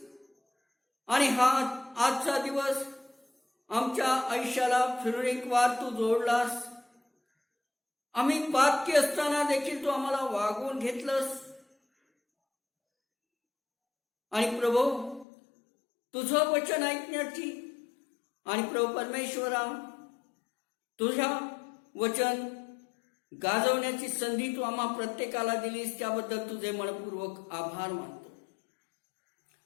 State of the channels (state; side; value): drops out; right; at 15.2 s